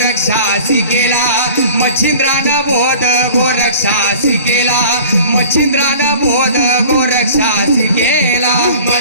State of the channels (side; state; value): both; inverted; correlation -0.43